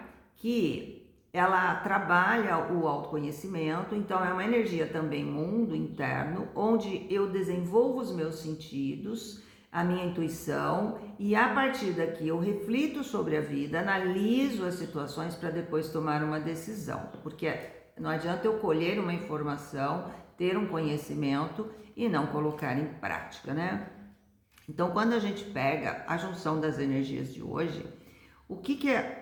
que ela trabalha o autoconhecimento, então é uma energia também mundo interno, onde eu desenvolvo os meus sentidos, a minha intuição, e a partir daqui eu reflito sobre a vida, analiso as situações para depois tomar uma decisão, porque não adianta eu colher uma informação, ter um conhecimento e não colocar em prática, né? Então, quando a gente pega a junção das energias de hoje, o que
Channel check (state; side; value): identical; both; correlation 1.00